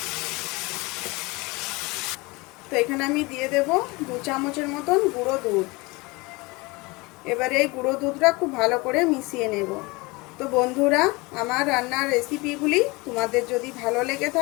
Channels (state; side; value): quieter; right; 24.8 dB